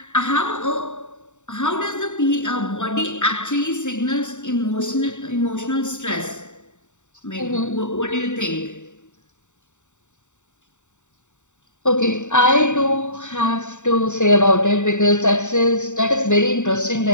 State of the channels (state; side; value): late; right; 0.84 ms